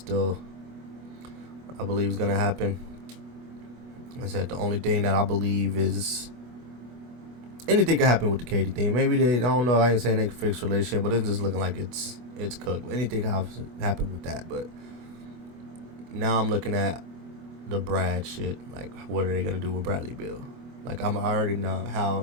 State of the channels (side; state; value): left; late; 25 ms